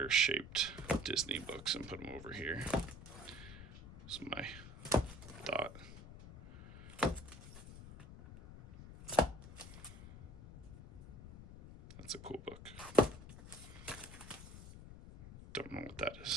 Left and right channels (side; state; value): left; noise; rumble, 14 dB below the sound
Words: shaped Disney books and put them over here. That's my thought. That's a cool book. Don't know what that